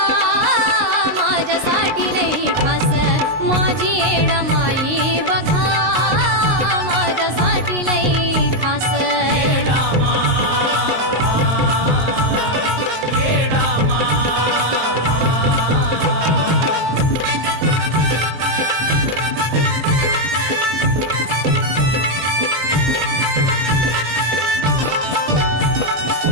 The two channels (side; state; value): left; late; 19 ms